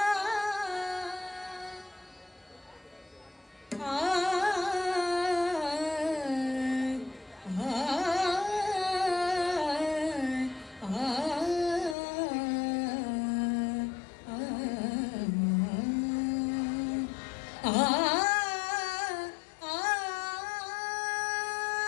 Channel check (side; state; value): right; drops out; at 12.0 s